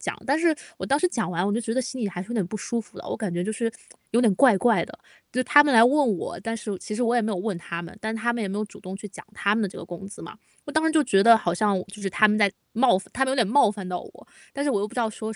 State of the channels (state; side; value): identical; both; correlation 1.00